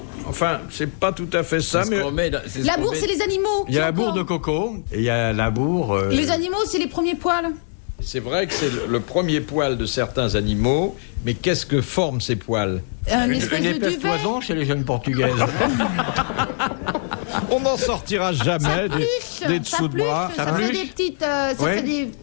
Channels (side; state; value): right; silent; digital silence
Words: Enfin, c'est pas tout à fait ça, mais... La bourre, c'est les animaux. Il y a la bourre de coco, et il y a la bourre... Et les animaux, c'est les premiers poils. C'est vrai que c'est le premier poil de certains animaux, mais qu'est-ce que forment ces poils? Une espèce de épaisse duvet. toison chez les jeunes portugaises. On n'en sortira jamais des dessous de bras. Ça fait des petites... ça Ouais. fait des...